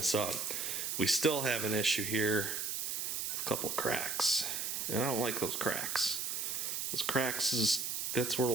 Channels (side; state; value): right; noise; hiss, 1 dB below the sound